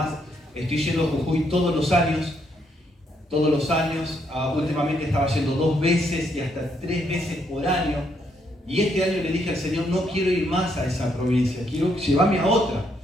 estoy yendo a Jujuy todos los años. Últimamente estaba yendo 2 veces y hasta 3 veces por año. Y este año le dije al Señor, no quiero ir más a esa provincia, quiero llevarme a otra.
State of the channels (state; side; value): normal; both; correlation 0.74